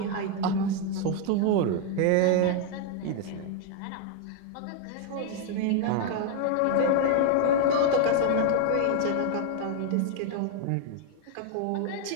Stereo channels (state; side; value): different; both; correlation 0.00